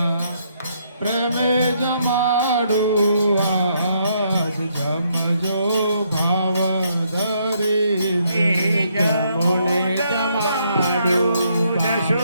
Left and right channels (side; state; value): both; inverted; correlation -0.73